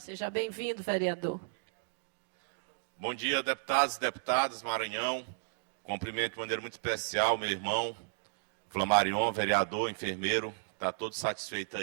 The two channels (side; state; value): left; silent; digital silence